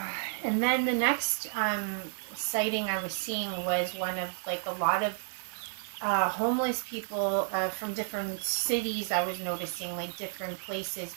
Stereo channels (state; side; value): silent; left; digital silence